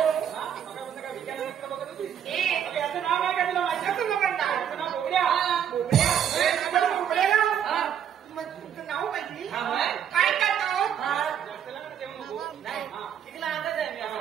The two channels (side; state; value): left; quieter; 9.0 dB